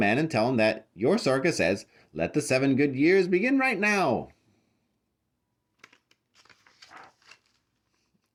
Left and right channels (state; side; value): identical; both; correlation 1.00